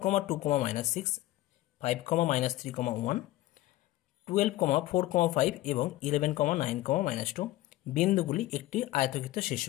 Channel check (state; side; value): quieter; right; 16.4 dB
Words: 5,-3,1, 12,4,5 এবং 11,9,-2 বিন্দুগুলি একটি আয়তক্ষেত্রের